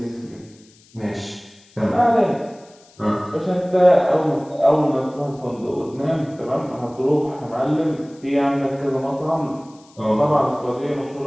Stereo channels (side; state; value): left; noise; hiss, 28 dB below the sound